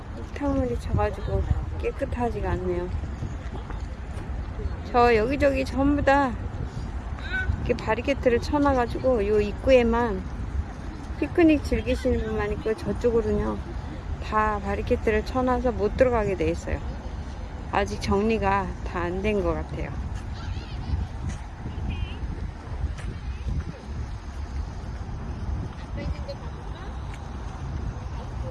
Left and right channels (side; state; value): both; identical; correlation 1.00